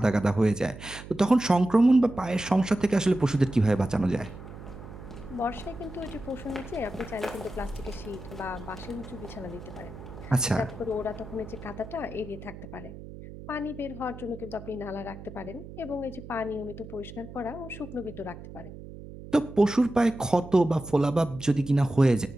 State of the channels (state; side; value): noise; right; hum, 14 dB below the sound